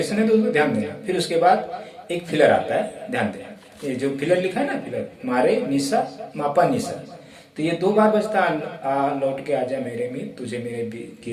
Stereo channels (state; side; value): identical; both; correlation 1.00